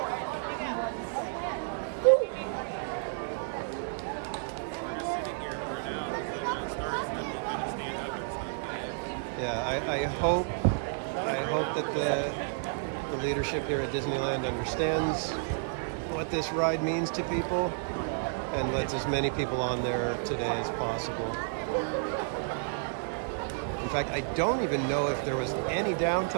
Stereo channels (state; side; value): silent; left; digital silence